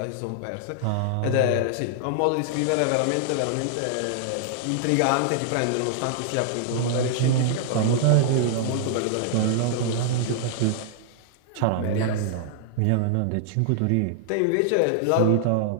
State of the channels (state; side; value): different; both; correlation -0.01